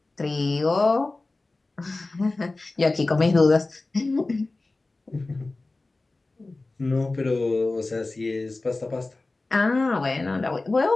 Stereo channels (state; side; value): quieter; right; 3.2 dB